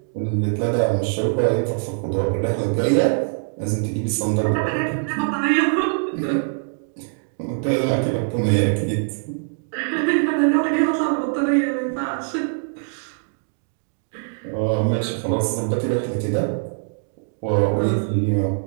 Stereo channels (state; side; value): silent; left; digital silence